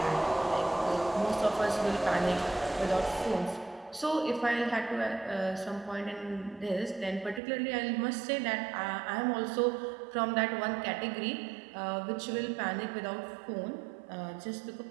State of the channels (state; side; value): drops out; left; at 7.4 s